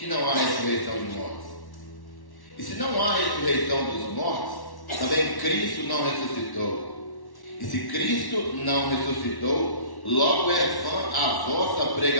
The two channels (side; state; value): right; late; 1.1 ms